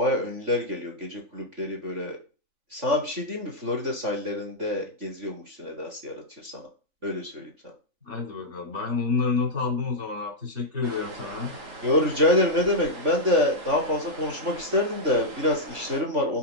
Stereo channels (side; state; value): left; late; 3.5 ms